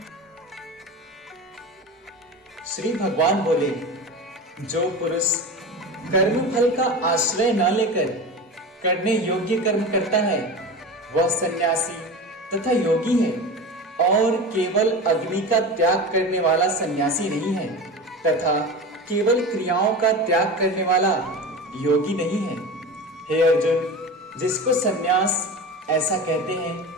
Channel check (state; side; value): normal; both; correlation 0.29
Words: श्री भगवान बोले, जो पुरुष कर्म फल का आश्रय न लेकर करने योग्य कर्म करता है वह सन्यासी तथा योगी है, और केवल अग्नि का त्याग करने वाला सन्यासी नहीं है तथा केवल क्रियाओं का त्याग करने वाला योगी नहीं है। हे अर्जुन, जिसको सन्यास ऐसा कहते हैं